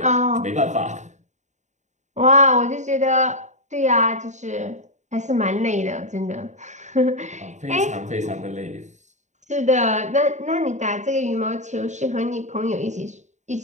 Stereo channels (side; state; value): left; late; 0.34 ms